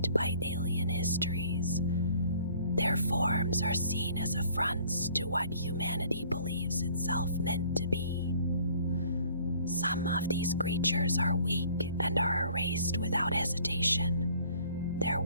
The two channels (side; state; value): both; inverted; correlation -0.56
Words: by alien histories. Their forms are seen as affronts to what humanity believes itself meant to be. Some of these creatures are weak and are erased without hesitation, their